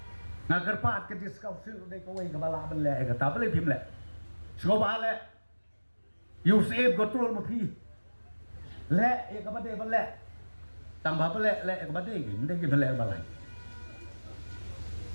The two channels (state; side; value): inverted; both; correlation -1.00